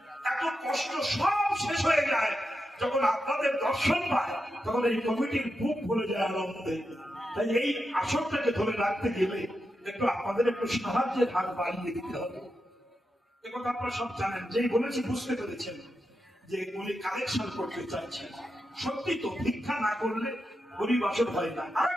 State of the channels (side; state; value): both; normal; correlation 0.88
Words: এত কষ্ট সব শেষ হয়ে যায় যখন আপনাদের দর্শন পায়, তখন এই কমিটির বুক ভরে যায় আনন্দে। তাই এই আসরটাকে ধরে রাখতে গেলে একটু আপনাদের একটু সাহায্যের হাত বাড়িয়ে দিতে হবে। একথা আপনারা সব জানেন, যেই বলেছি বুঝতে পেরেছেন যে উনি কালেকশন করতে চাইছেন। সত্যি তো, ভিক্ষা না করলে হরিবাসর হয় না। আর